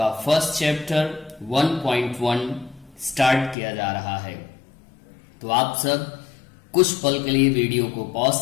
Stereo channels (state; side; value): drops out; right; at 3.6 s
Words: फर्स्ट चैप्टर 1.1 स्टार्ट किया जा रहा है। तो आप सब कुछ पल के लिए वीडियो को